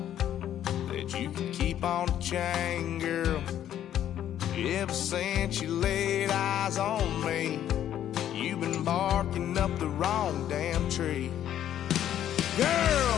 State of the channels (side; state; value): right; quieter; 11.0 dB